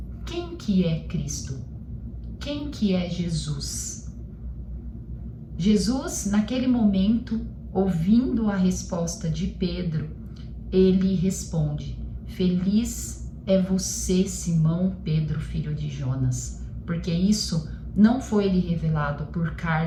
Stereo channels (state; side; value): identical; both; correlation 1.00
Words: quem que é Cristo? Quem que é Jesus? Jesus, naquele momento, ouvindo a resposta de Pedro, ele responde: "Feliz é você, Simão Pedro, filho de Jonas, porque isso não foi lhe revelado por